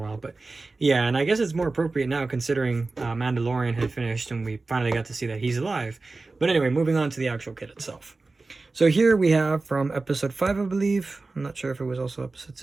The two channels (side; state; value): left; quieter; 3.6 dB